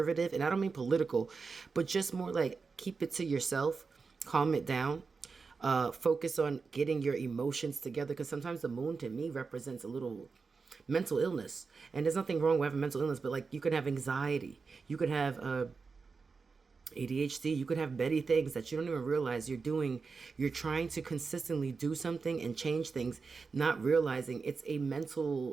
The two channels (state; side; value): quieter; left; 4.8 dB